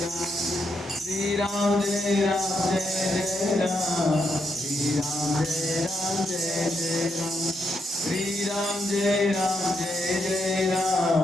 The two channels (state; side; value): normal; both; correlation 0.80